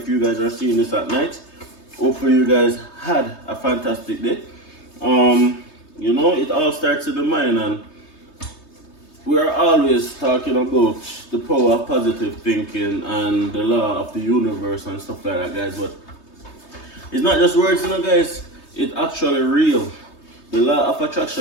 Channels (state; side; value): late; right; 3.2 ms